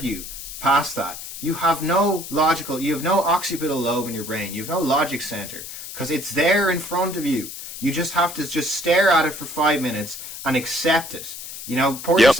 past that, you have no occipital lobe in your brain. You have no logic center, because it's there in front of you. You just have to just stare at it for 5 minutes and accept it. Pour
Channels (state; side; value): noise; left; hiss, 10 dB below the sound